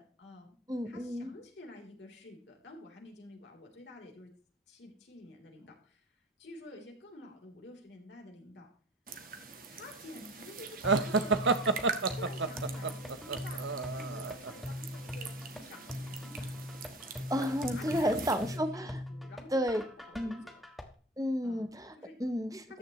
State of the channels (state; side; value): normal; both; correlation 0.39